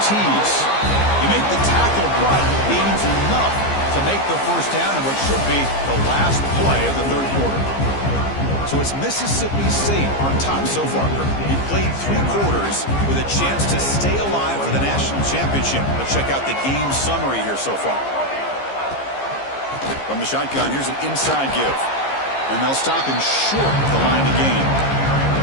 tease. You make the tackle, but gains enough to make the first down in what should be the last play of the third quarter. So it's Mississippi State on top so far. He played 3 quarters with a chance to stay alive for the national championship. Let's check out the game summary here so far. From the shotgun, here's an inside give. And they'll stop him short of the line to gain.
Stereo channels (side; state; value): right; late; 15 ms